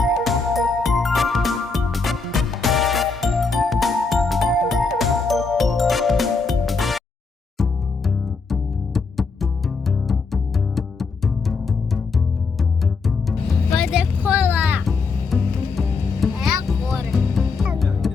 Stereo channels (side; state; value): right; quieter; 4.4 dB